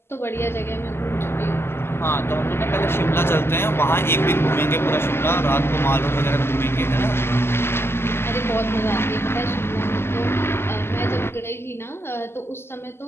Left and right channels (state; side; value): late; right; 0.12 ms